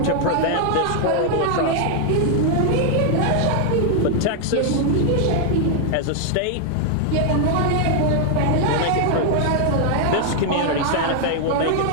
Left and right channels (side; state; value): both; different; correlation 0.00